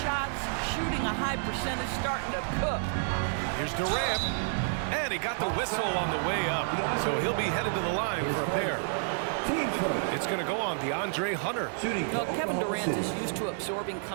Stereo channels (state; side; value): silent; left; 58 dB below the other